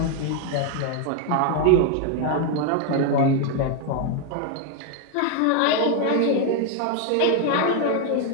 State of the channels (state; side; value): different; both; correlation 0.01